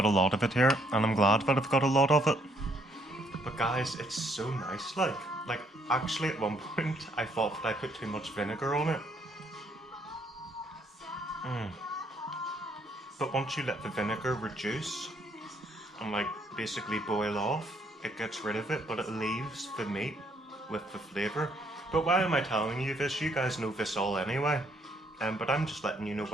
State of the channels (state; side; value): normal; both; correlation 0.68